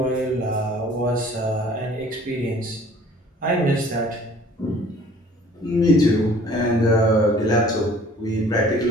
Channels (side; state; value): both; normal; correlation 0.52